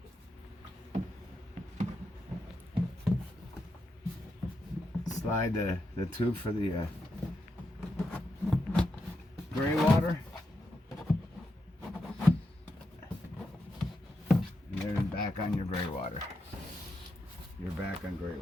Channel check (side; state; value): both; normal; correlation 0.84